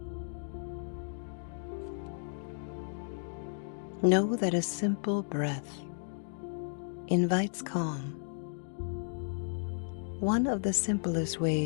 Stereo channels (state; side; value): silent; right; digital silence